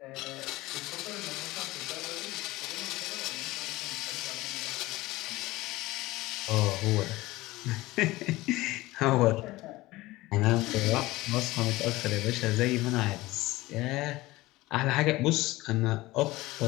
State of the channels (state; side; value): quieter; right; 19.1 dB